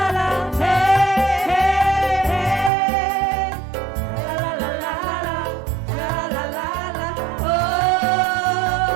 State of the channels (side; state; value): left; drops out; at 2.7 s